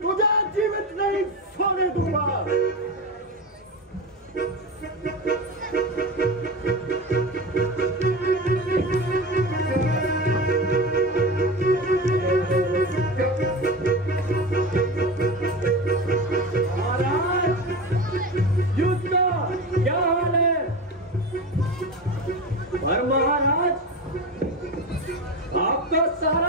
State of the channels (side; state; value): both; normal; correlation 0.26